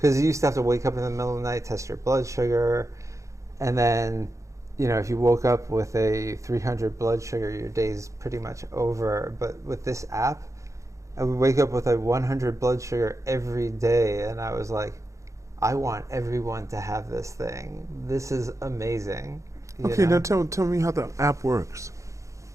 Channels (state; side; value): late; left; 0.15 ms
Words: you used to have to wake up in the middle of the night, test your blood sugar, and then, if you woke up with a 300 blood sugar, your day's pretty much over. But with this app, I would wake up with a 100 blood sugar every day, and I was like, I want everyone to have this thing. This is amazing. Okay, now tell me how the app works.